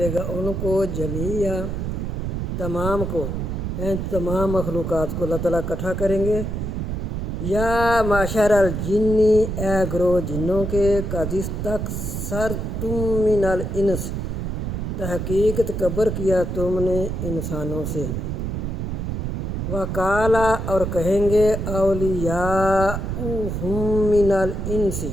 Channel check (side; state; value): right; noise; rumble, 3 dB below the sound